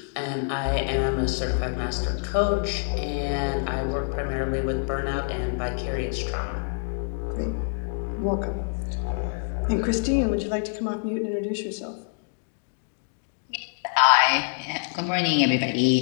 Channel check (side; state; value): right; silent; digital silence